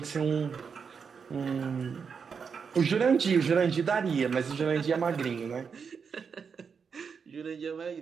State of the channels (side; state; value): left; quieter; 6.1 dB